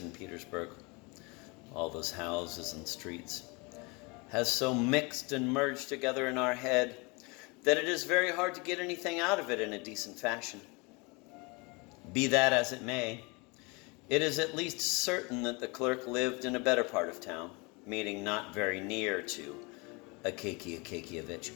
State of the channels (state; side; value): quieter; right; 28.4 dB